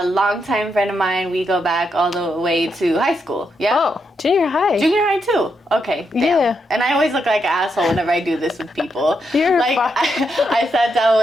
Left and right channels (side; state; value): both; normal; correlation 0.81